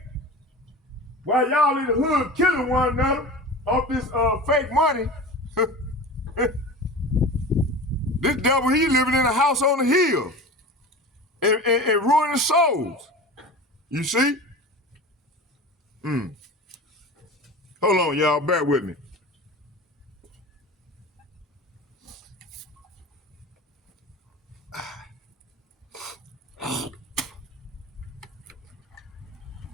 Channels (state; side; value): normal; both; correlation 0.33